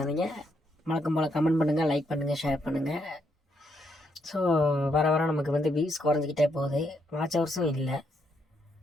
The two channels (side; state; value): both; normal; correlation 0.76